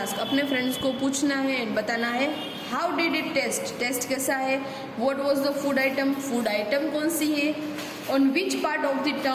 अपने फ्रेंड्स को पूछना है एंड बताना है how did it taste, taste कैसा है। What was the food item, food item कौन सी है। On which part of the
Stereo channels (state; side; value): identical; both; correlation 1.00